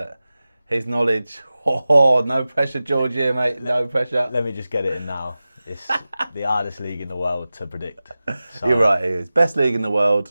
his knowledge, no pressure, Georgie, here, mate. No pressure. Let me just get it in now. It's the hardest league in the world to predict. So You're right, it is. Best league in the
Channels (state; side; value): inverted; both; correlation -0.96